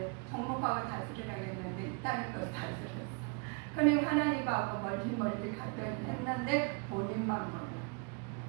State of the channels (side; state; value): left; quieter; 33.9 dB